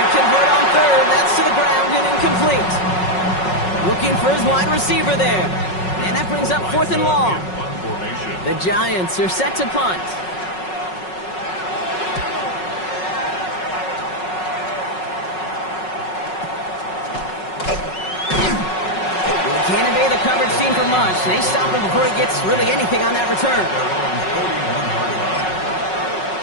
convert on 3rd. That's to the ground and incomplete. Looking for his wide receiver there. And that brings up 4th and long. The Giants are set to punt. Can't evade the coverage team for much. They stop him before he gets really anything on that return.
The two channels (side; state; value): right; late; 5.4 ms